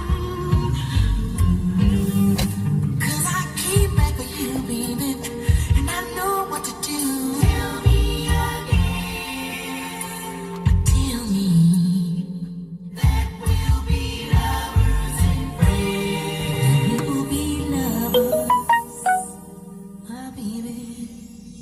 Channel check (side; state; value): both; identical; correlation 1.00